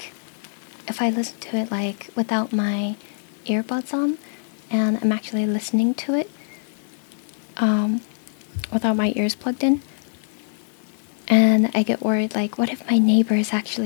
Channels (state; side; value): silent; right; digital silence